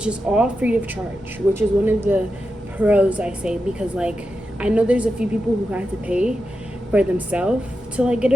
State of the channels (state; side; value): normal; both; correlation 0.89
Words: is all free of charge, which is one of the pros, I say, because like I know there's a few people who have to pay for themselves to like get